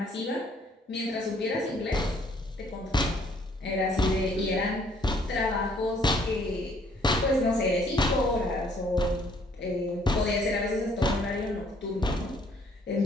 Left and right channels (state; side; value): normal; both; correlation 0.63